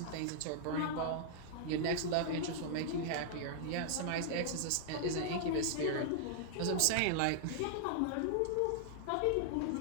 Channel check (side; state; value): both; different; correlation -0.01